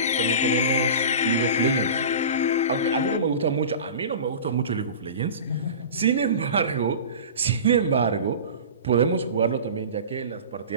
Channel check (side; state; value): both; inverted; correlation -0.34